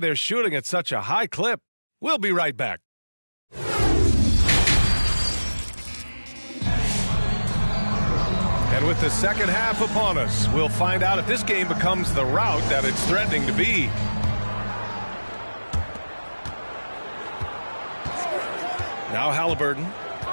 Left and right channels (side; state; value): both; inverted; correlation -1.00